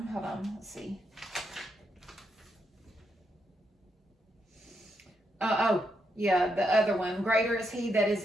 hold on, let's see. The other one. Greater is he that is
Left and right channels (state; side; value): normal; both; correlation 0.81